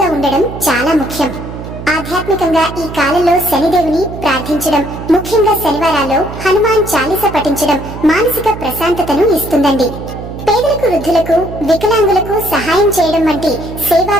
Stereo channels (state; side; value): noise; right; hum, 10 dB below the sound